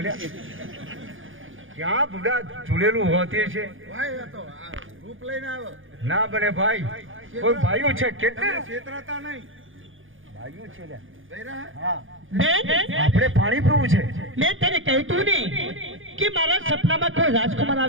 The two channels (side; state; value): left; late; 0.58 ms